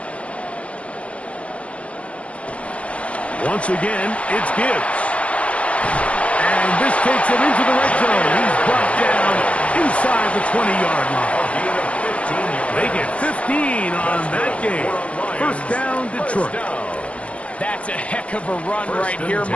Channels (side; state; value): right; late; 0.063 ms